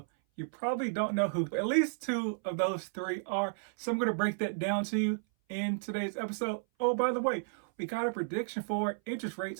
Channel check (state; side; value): silent; left; 56 dB below the other